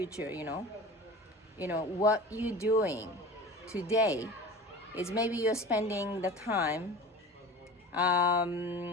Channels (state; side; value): normal; both; correlation 0.37